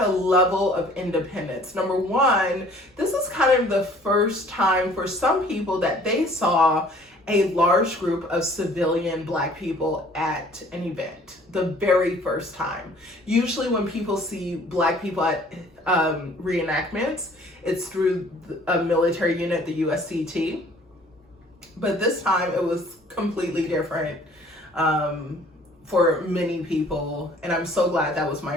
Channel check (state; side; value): normal; both; correlation 0.54